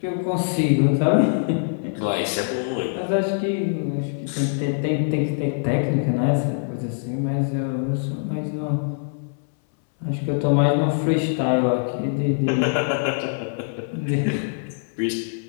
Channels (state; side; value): silent; right; 62 dB below the other